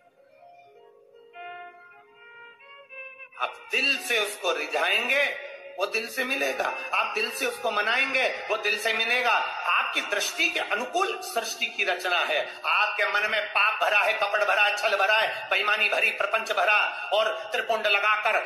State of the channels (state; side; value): identical; both; correlation 1.00